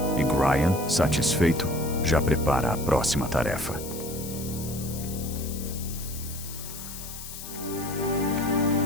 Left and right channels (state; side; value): noise; left; hiss, 11 dB below the sound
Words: E Gryan, satisfeito, já prepara a próxima tarefa.